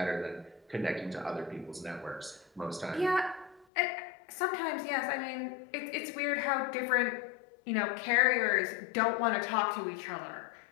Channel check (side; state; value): right; drops out; at 3.7 s